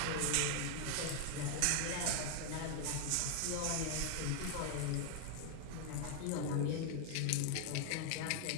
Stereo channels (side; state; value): both; different; correlation 0.00